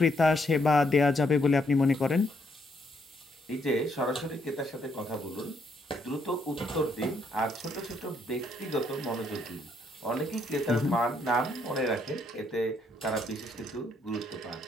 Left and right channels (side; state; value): both; normal; correlation 0.73